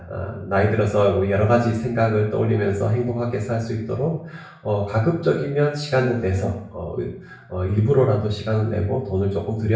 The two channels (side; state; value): both; identical; correlation 1.00